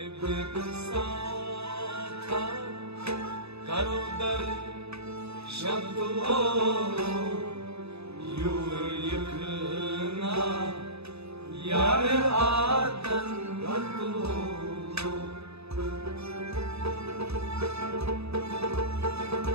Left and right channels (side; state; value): left; late; 0.79 ms